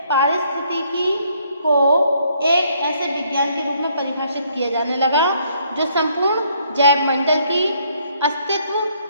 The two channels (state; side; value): inverted; both; correlation -0.68